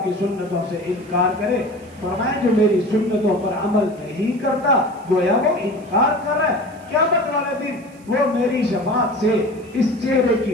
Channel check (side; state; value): right; noise; hiss, 28 dB below the sound